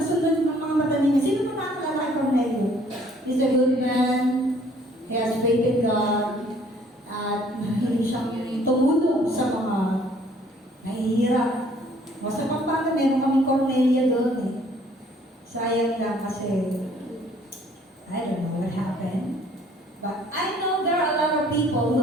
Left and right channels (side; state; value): both; normal; correlation 0.59